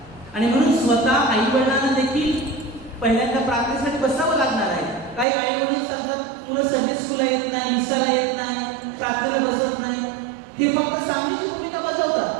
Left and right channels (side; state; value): left; drops out; at 5.2 s